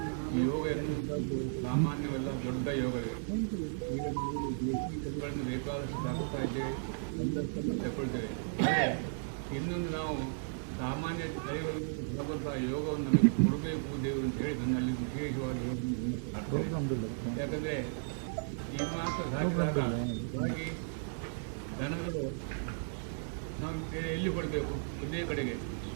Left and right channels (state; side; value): silent; left; digital silence